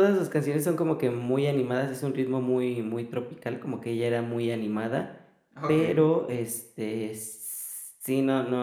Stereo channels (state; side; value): identical; both; correlation 1.00